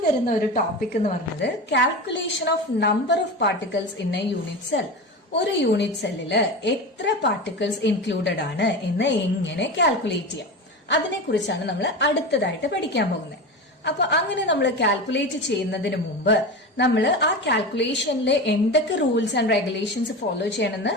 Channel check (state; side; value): normal; both; correlation 0.25